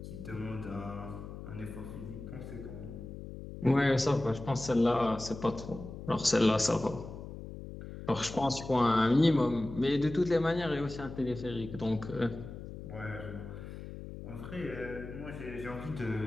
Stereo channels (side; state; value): left; noise; hum, 11 dB below the sound